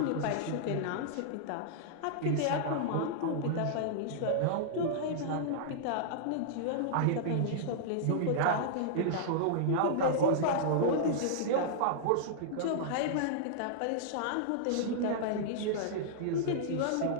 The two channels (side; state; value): both; different; correlation -0.02